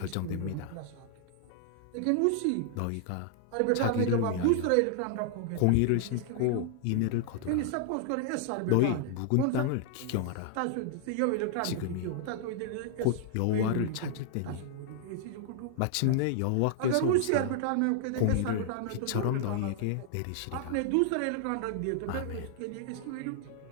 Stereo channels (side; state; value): both; different; correlation -0.01